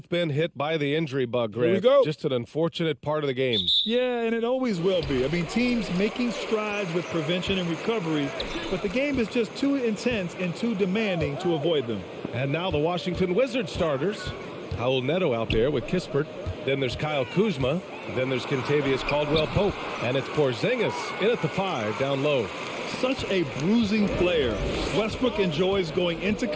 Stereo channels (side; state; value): both; identical; correlation 1.00